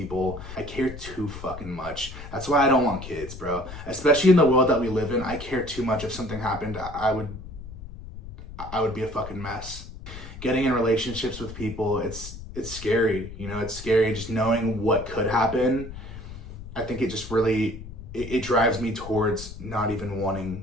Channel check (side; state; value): left; noise; rumble, 12 dB below the sound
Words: I care too fucking much. That's why I don't want kids, bro. Especially in the world that we live in, I care too much. If something happened, I would be a fucking mess. Getting in relationships with people, it's scary, you know, it's scary just knowing what could happen. I think it just really, it drives me towards not even